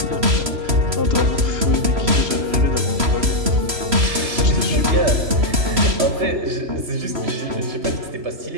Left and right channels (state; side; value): late; left; 3.0 ms